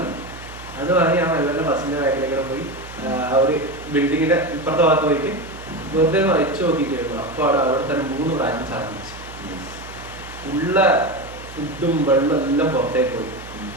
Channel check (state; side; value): noise; right; hum, 16 dB below the sound